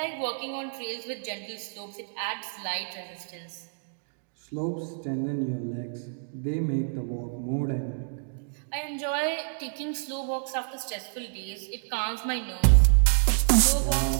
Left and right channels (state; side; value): silent; left; digital silence